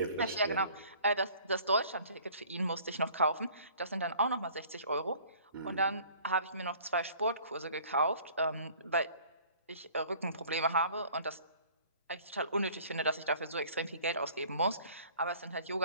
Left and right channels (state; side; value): inverted; both; correlation -0.51